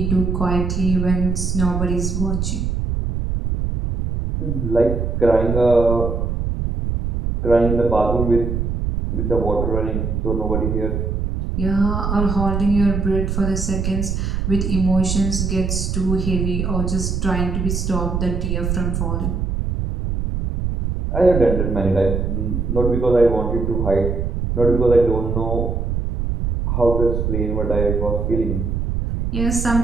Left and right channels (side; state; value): right; noise; rumble, 1 dB below the sound